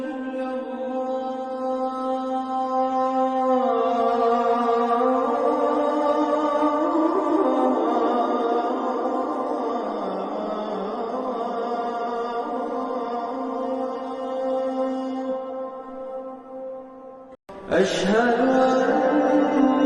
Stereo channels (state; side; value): identical; both; correlation 1.00